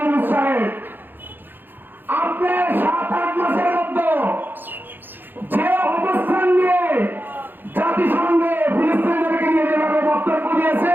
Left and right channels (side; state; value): left; late; 0.093 ms